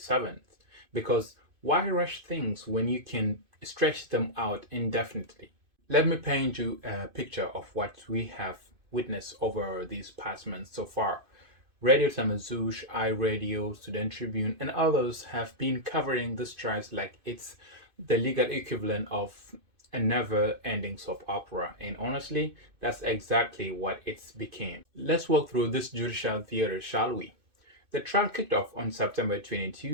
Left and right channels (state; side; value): late; left; 2.5 ms